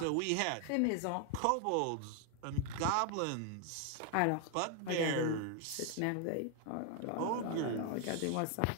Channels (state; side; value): different; both; correlation 0.00